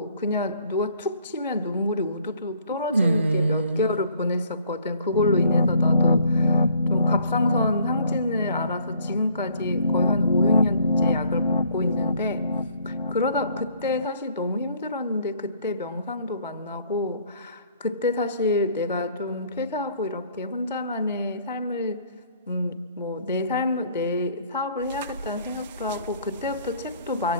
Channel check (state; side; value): inverted; both; correlation -0.60